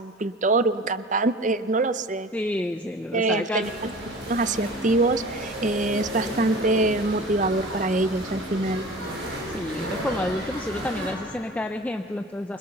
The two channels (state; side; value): normal; both; correlation 0.40